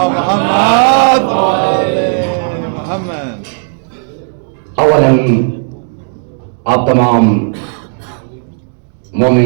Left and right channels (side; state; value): left; silent; digital silence